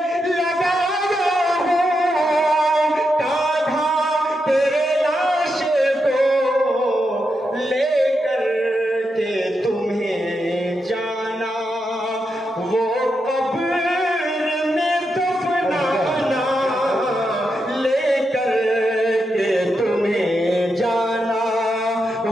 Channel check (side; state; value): both; normal; correlation 0.85